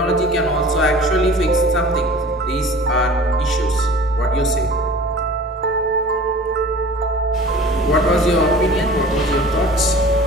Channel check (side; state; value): both; normal; correlation 0.43